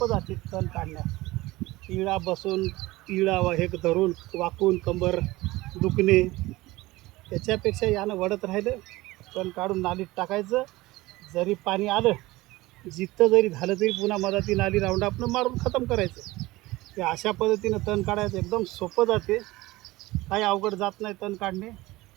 जाते तण काढण्यास. इळा बसून इळा हे धरून वाकून कंबर दुखणे त्याच्यापेक्षा यानं वडत राहिलं तण काढून नालीत टाकायचं. जरी पाणी आलं जिथं जरी झालं तरी पुन्हा मधाती नाली राऊंड आपण मारून खतम करायचं. ते अशा पद्धतीनं तण काढायचं एकदम सोपं जाते. काही अवघड जात नाही तण काढणे.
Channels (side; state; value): left; quieter; 19.5 dB